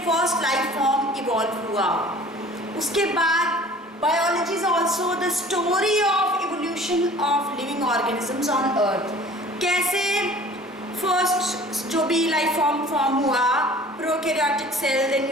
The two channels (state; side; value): normal; both; correlation 0.47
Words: first life form evolve हुआ. उसके बाद biology is also the story of evolution of living organisms on earth. कैसे first जो भी लाइफ फॉर्म हुआ, prokaryotic cell, then